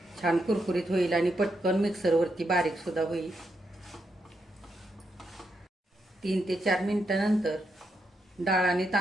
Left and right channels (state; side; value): normal; both; correlation 0.81